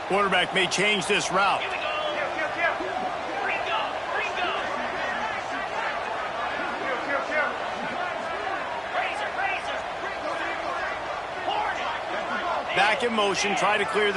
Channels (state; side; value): identical; both; correlation 1.00